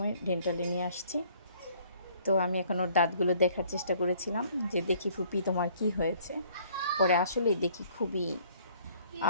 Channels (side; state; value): both; inverted; correlation -0.60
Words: ডেন্টালে নিয়ে আসছি। তো আমি এখন ওর দাঁতগুলো দেখার চেষ্টা করেছিলাম, যে দেখি ফুপি তোমার কি হয়েছে। পরে আসলেই দেখি খুবই